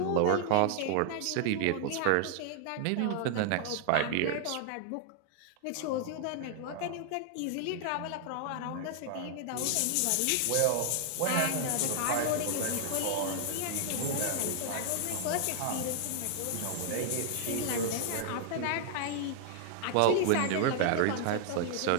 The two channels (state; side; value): different; both; correlation 0.00